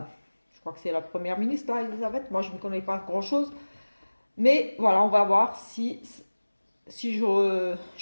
c'est la première ministre, là, Elisabeth. Moi, je ne connais pas grand-chose. Mais voilà, on va voir si je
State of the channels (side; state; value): both; inverted; correlation -1.00